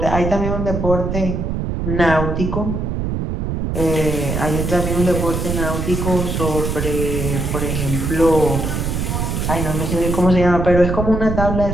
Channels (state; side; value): noise; right; rumble, 2 dB below the sound